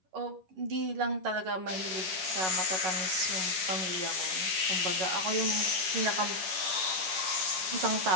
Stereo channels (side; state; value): left; late; 10 ms